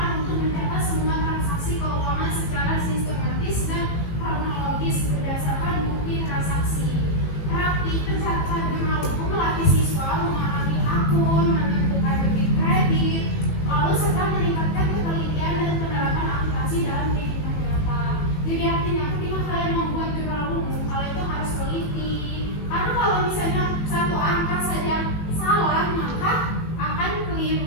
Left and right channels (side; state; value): right; late; 18 ms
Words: untuk mencatat semua transaksi keuangan secara sistematis dan kronologis berdasarkan bukti transaksi. Praktik pencatatan jurnal umum melatih siswa memahami akun, menentukan debit kredit, lalu serta meningkatkan ketelitian dan penerapan akuntansi dalam kehidupan nyata. Jadi artinya ketika kalian membuat jurnal umum, kalian itu harus teliti. Karena kalau misalnya satu angka saja salah, maka akan